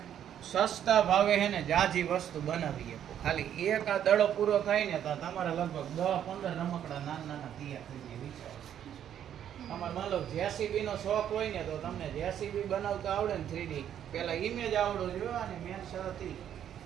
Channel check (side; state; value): left; quieter; 9.9 dB